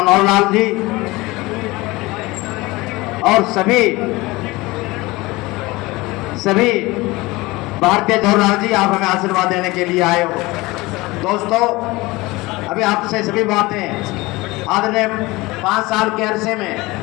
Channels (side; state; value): right; quieter; 21.5 dB